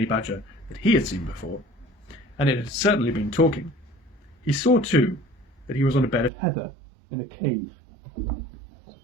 badger that he had seen before, and it had certainly been talking. He saw, too, that he was on a bed of heather in a cave. It's a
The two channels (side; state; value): left; drops out; at 6.3 s